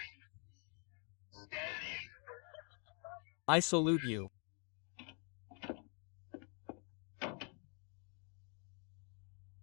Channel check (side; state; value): right; quieter; 39.5 dB